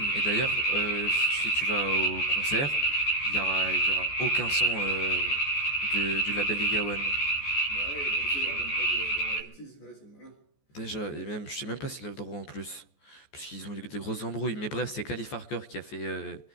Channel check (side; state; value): right; late; 14 ms